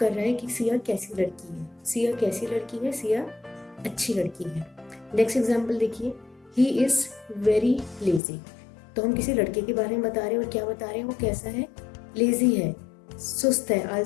रहा है कि सिया कैसी लड़की है। सिया कैसी लड़की है, सिया अच्छी लड़की है। नेक्स्ट एग्जाम्पल देखिए, ही इज़ वेरी लेजी। तो हम किसी लड़के के बारे में बता रहे हैं और क्या बता रहे हैं, वो कैसा है, लेजी है, सुस्त है,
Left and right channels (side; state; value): right; drops out; at 8.2 s